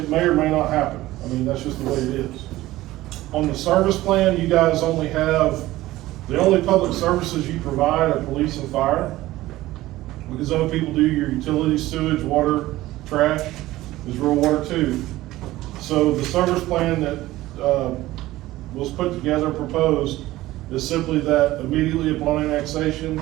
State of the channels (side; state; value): left; quieter; 16.8 dB